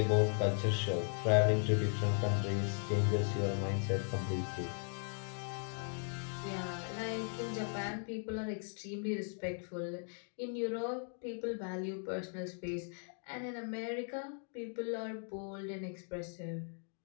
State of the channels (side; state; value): right; silent; 53 dB below the other